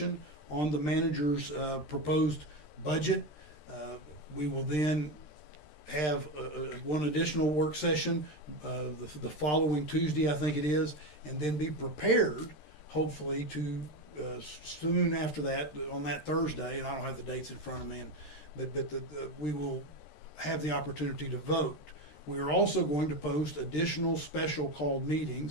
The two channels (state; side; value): late; right; 13 ms